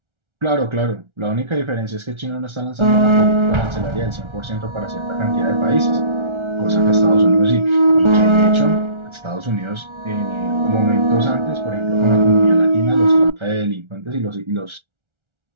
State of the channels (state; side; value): late; left; 1.4 ms